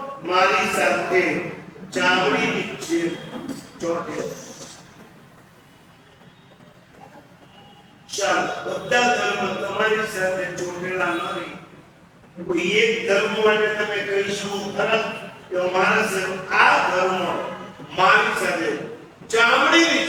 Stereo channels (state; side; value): identical; both; correlation 1.00